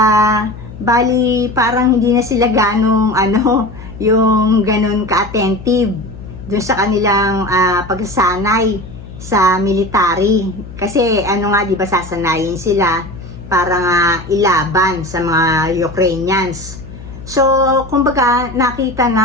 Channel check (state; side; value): noise; left; hum, 15 dB below the sound